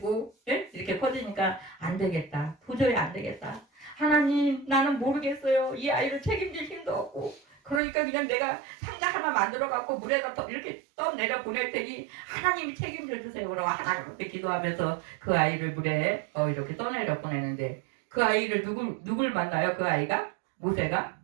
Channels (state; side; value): drops out; left; at 7.8 s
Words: 이렇게 커지니까 안 되겠다. 도저히 안 되겠다. 하나님 나는 모르겠어요. 이 아이를 책임질 힘도 없고 그러니까 그냥 내가 상자 하나 만들어갖고 물에다 이렇게 떠내려 보낼 테니 하나님이 책임져 주세요. 그러고 하나님 앞에 기도하면서 그 아이를 물에 이렇게 떠내려 보내는데 그 아이를 누굴 만나요? 그 아이가? 모세가?